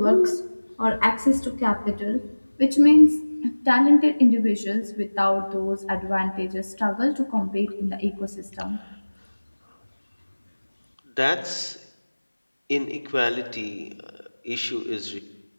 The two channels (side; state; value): both; inverted; correlation -1.00